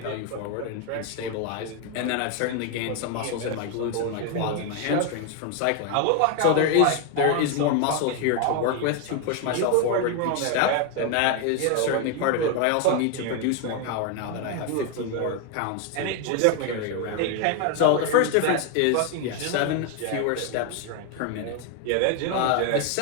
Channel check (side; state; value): both; different; correlation 0.01